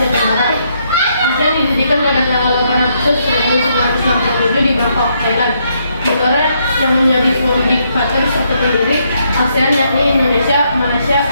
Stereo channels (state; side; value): inverted; both; correlation -0.75